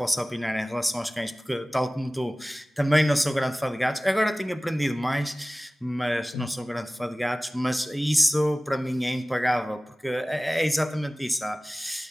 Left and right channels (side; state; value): both; normal; correlation 0.97